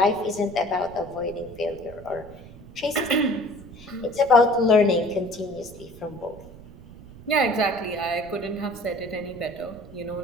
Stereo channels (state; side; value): noise; right; rumble, 18 dB below the sound